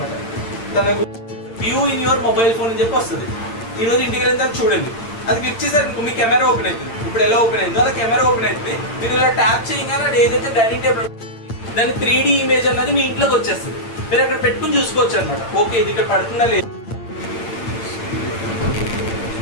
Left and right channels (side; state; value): right; late; 8.8 ms